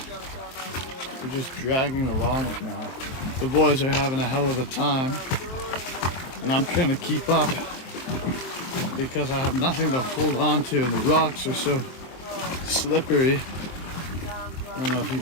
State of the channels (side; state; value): right; late; 23 ms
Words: just dragging along it now. The boys are having a hell of a time, and I'm trying to keep up because I have nothing to hold on to, and the rocks are so slippery. I don't know if you